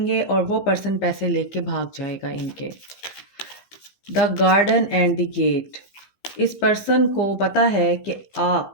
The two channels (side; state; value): right; late; 15 ms